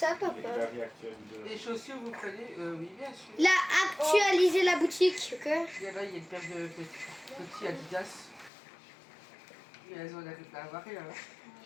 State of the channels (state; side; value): drops out; right; at 8.5 s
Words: papa? La vie actuelle de... Les chaussures, vous prenez oui, bien sûr. Là, actualiser la boutique, ok? Là, il y a une paire de petits Adidas. Et elles ont la avare là.